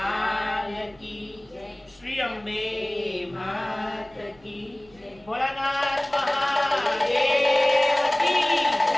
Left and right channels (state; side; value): noise; right; rumble, 29 dB below the sound